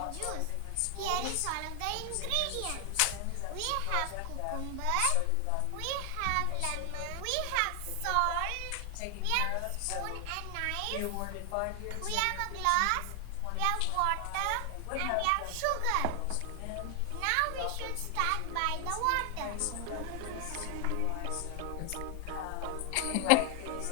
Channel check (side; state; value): both; different; correlation 0.00